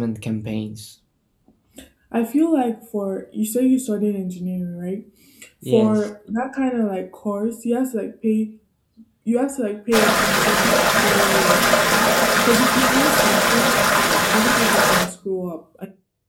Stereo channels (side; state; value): both; identical; correlation 1.00